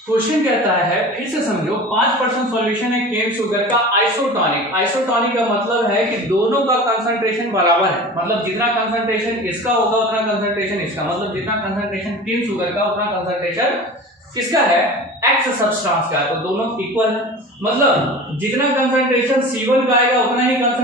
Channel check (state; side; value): normal; both; correlation 0.36